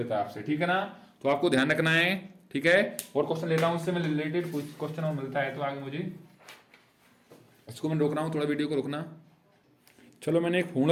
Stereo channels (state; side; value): identical; both; correlation 1.00